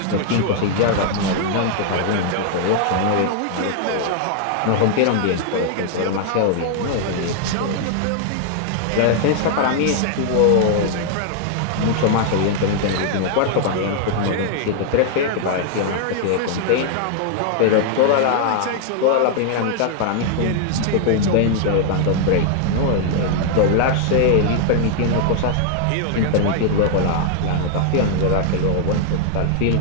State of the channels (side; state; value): both; different; correlation 0.00